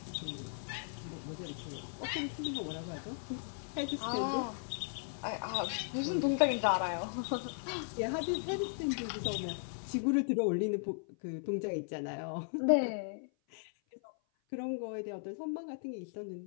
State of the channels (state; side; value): silent; right; 53 dB below the other